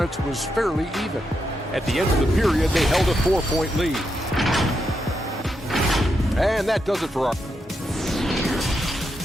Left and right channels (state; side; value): normal; both; correlation 0.83